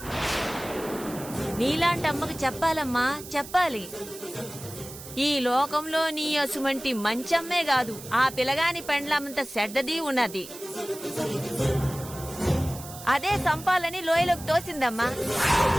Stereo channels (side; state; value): right; noise; hiss, 14 dB below the sound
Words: నీలాంటి అమ్మకు చెప్పాలమ్మా, చెప్పాలి. ఈ లోకంలో నీ అసుమంటి మంచమ్మే కాదు, ఆ పిల్లగాని పెండ్లమంత చెడ్డది ఉన్నది. అదే సంపాలని లోయలోకి తోసిందమ్మా.